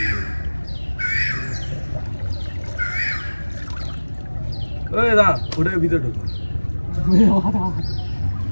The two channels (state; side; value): inverted; both; correlation -1.00